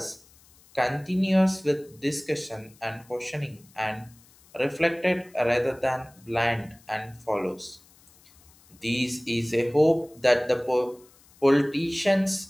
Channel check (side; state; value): left; noise; hiss, 28 dB below the sound